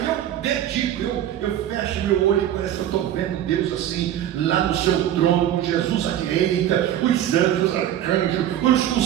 E eu dedico, eu fecho meu olho e parece que eu estou vendo Deus assim, lá no seu trono, com Jesus à direita, os anjos, os arcanjos,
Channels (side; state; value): left; quieter; 11.4 dB